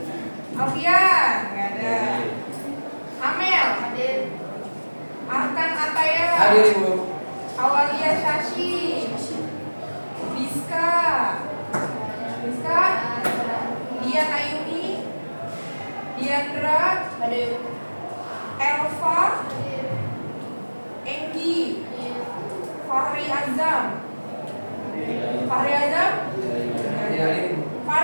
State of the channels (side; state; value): both; inverted; correlation -1.00